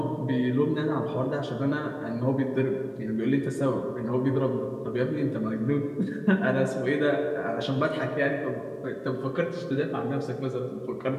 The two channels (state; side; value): identical; both; correlation 1.00